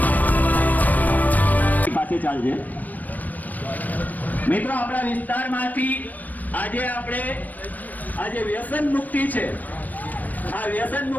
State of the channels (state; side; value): late; right; 0.082 ms